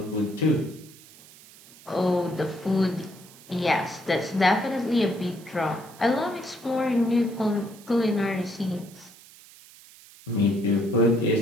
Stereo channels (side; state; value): right; noise; hiss, 22 dB below the sound